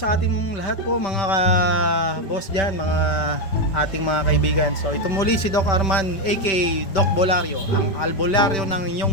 ating lahat po mga boss dyan, mga ating mga kaibigan. So ito muli si Doc Arman aka Doc Bolario, ang albularyo ng inyong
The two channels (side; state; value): right; late; 5.2 ms